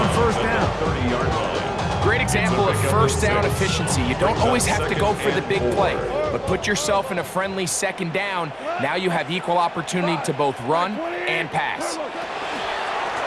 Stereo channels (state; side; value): identical; both; correlation 1.00